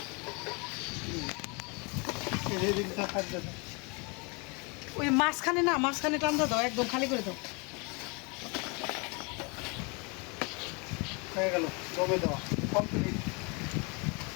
এই দিকটা থাকবে না। ওই মাঝখানে না, মাঝখানে টানতে দাও, একদম খালি করে দাও। হয়ে গেল দমে দেওয়া কমপ্লিট,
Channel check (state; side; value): quieter; right; 30.8 dB